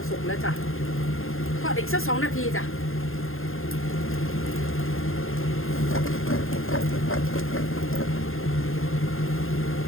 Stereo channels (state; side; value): late; right; 0.60 ms